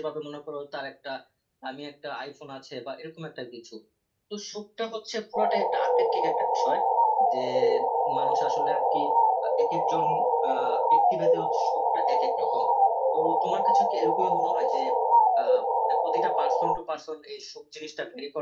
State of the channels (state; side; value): identical; both; correlation 1.00